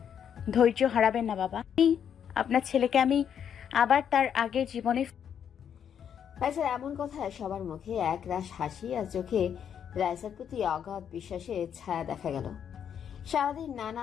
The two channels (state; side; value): quieter; right; 8.4 dB